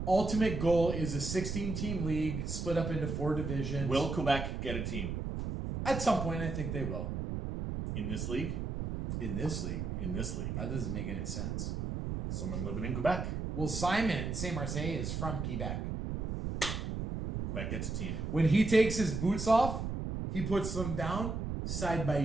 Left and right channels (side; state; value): right; noise; rumble, 3 dB below the sound